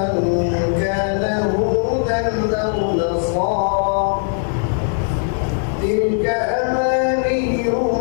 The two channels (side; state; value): right; silent; digital silence